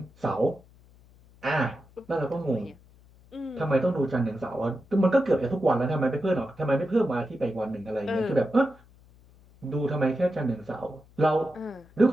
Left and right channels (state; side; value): noise; left; hum, 27 dB below the sound